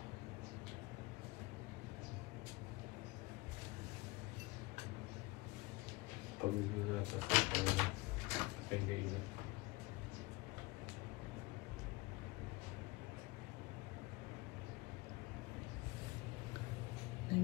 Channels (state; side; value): quieter; right; 22.6 dB